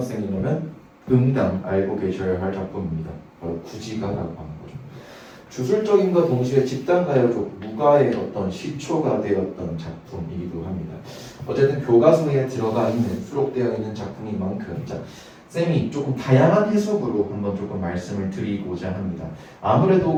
응당 알고 계셔야 할 작품입니다. 바로 구지가라고 하는 거죠. 주술적인과 동시에 집단 가요적 무가의 어떤 시초가 되었던 작품이기도 합니다. 어쨌든 교과서에 들어가 있는 수록되어 있는 작품인 만큼 자, 쌤이 조금 다양한 해석으로 한번 조금 말씀을 드리고자 합니다.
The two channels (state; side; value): identical; both; correlation 1.00